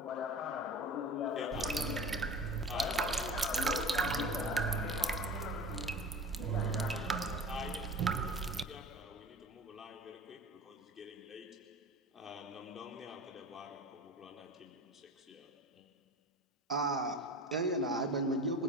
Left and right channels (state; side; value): normal; both; correlation 0.36